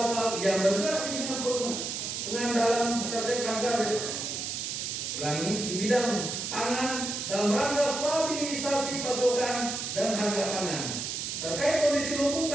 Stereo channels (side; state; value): right; noise; hiss, 4 dB below the sound